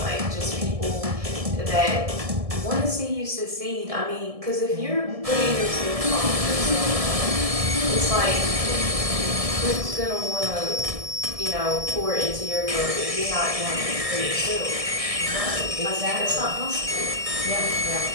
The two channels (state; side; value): late; left; 1.7 ms